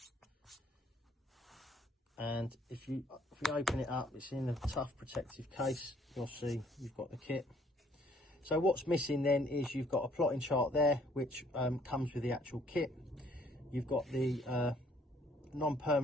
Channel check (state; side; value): normal; both; correlation 0.62